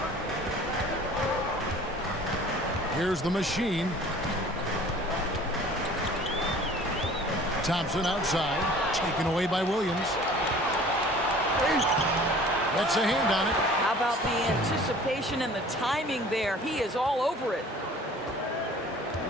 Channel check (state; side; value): normal; both; correlation 0.48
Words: Here's the machine. Thompson outside, taken away by Williams. That's a hand on it. How about the anticipation and the timing there? He is all over it.